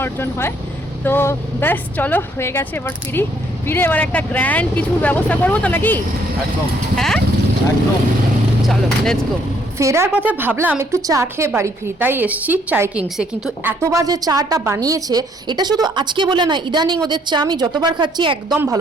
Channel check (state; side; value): normal; both; correlation 0.67